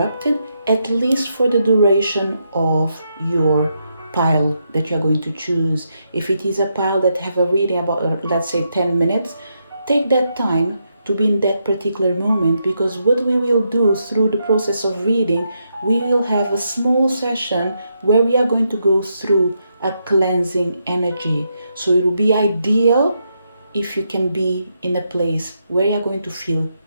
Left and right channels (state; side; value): inverted; both; correlation -0.81